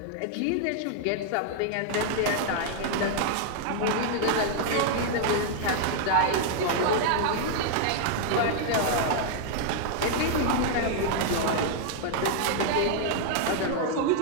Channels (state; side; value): different; both; correlation -0.01